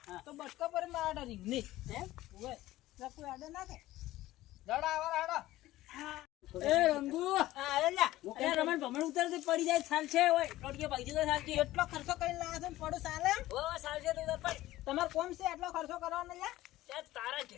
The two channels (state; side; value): quieter; right; 16.1 dB